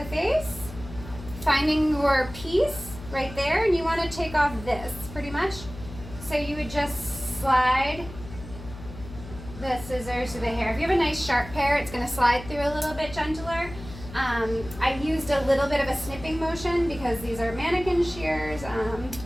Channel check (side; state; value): left; noise; hum, 14 dB below the sound